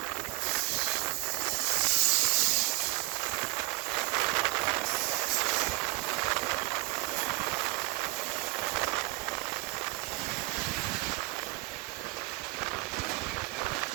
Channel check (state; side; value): quieter; left; 22.1 dB